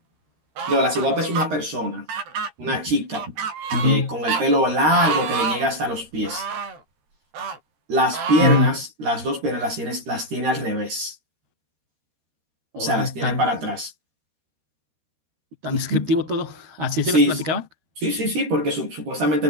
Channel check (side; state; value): left; late; 13 ms